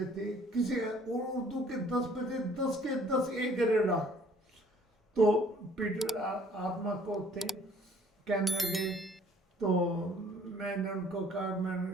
تھے کسی, اور اردو کے 10 بچے 10 کے 10 ایک گریڈ آ. تو پیٹر آتما کو تھے, کہنے لگے, تو میں نے ان کو کہا, میں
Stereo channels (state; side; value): normal; both; correlation 0.57